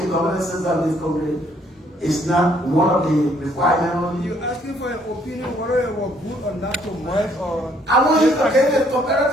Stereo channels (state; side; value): normal; both; correlation 0.66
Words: governance system of this country It's not one of the requirements. You're asking for an opinion whether it was good or not to merge or... I want you to get a